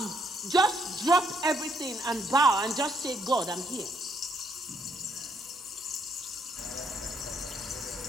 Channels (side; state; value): both; normal; correlation 0.72